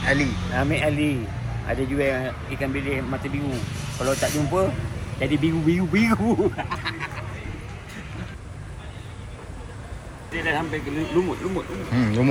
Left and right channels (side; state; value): both; identical; correlation 1.00